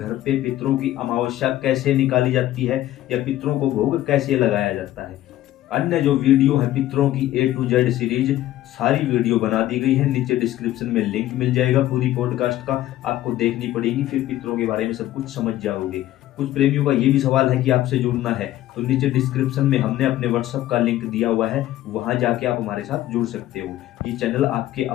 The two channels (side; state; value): right; quieter; 14.2 dB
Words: पे पितरों की अमावस्या कैसे निकाली जाती है या पितरों को भोग कैसे लगाया जाता है। अन्य जो वीडियो है पितरों की A to Z सीरीज, सारी वीडियो बना दी गई है। नीचे डिस्क्रिप्शन में लिंक मिल जाएगा पूरी पॉडकास्ट का, आपको देखनी पड़ेगी, फिर पितरों के बारे में सब कुछ समझ जाओगे। कुछ प्रेमियों का ये भी सवाल है कि आपसे जुड़ना है तो नीचे डिस्क्रिप्शन में हमने अपने व्हाट्सएप का लिंक दिया हुआ है, वहां जाके आप हमारे साथ जुड़ सकते हो। ये चैनल आपके